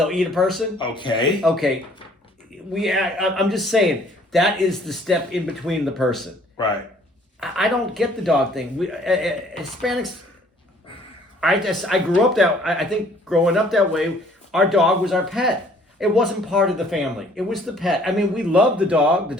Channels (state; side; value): normal; both; correlation 0.58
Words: eat a person. Okay. Okay. I'm just saying, that is the step in between the person. Right. I don't get the dog thing. Hispanics, I grew up I think growing up that way, our dog was our pet. It wasn't part of the family. It was the pet. I mean, we loved the dog. The